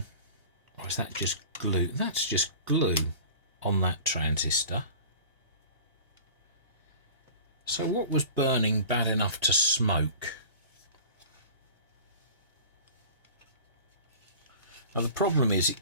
Or is that just glue? That's just glue on that transistor. So what was burning bad enough to smoke? Now the problem is it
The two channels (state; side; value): inverted; both; correlation -0.40